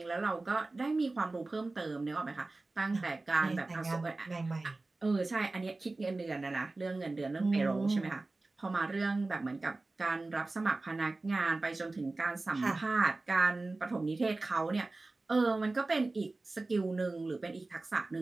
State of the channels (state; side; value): quieter; left; 3.2 dB